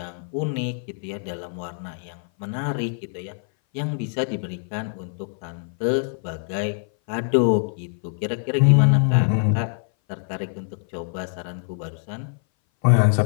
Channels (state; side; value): silent; right; 59 dB below the other